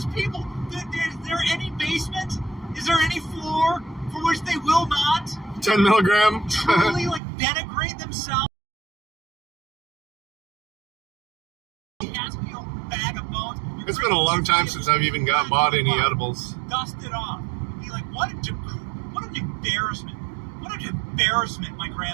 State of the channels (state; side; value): drops out; left; at 7.2 s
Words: people? Is there any basement? Is there any floor for which they will not 10 milligram. truly, like, denigrate themselves? Bag of bones. It's been a long time since I've even bought any edibles. Dust it off. Be like, what an embarrassment. What an embarrassment, my